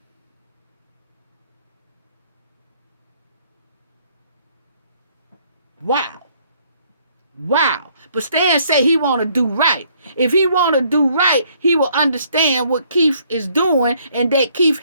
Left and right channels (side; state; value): both; inverted; correlation -0.65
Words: Wow. But Stan say he want to do right. If he want to do right, he will understand what Keith is doing and that Keith